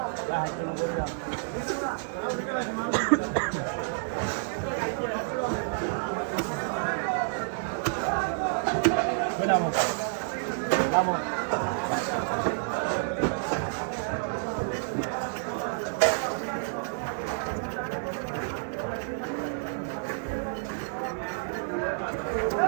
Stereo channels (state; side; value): silent; left; digital silence